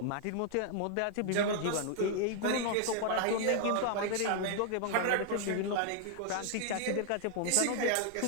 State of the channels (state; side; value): different; both; correlation 0.00